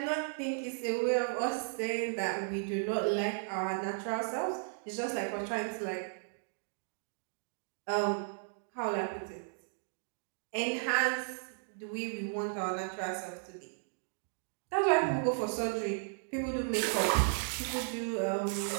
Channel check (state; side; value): silent; left; digital silence